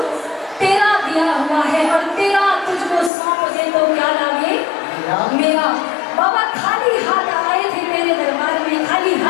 तेरा दिया हुआ है। और तेरा तुझको सौंप दे तो क्या लागे मेरा। बाबा खाली हाथ आए थे तेरे दरबार में, खाली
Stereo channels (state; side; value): drops out; right; at 3.1 s